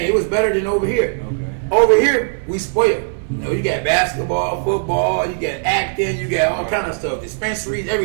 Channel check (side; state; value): left; silent; digital silence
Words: it was better than over here. Okay. Over here, we spoiled. You know, you got basketball, football, you got acting, you got all kind of stuff, dispensaries,